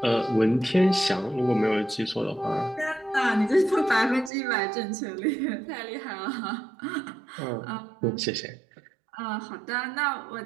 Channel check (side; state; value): left; drops out; at 4.3 s